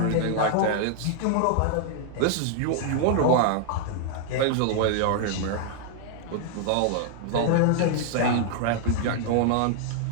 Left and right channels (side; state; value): both; different; correlation -0.01